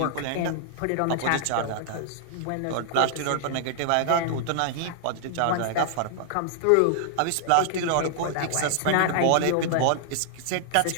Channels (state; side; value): different; both; correlation -0.01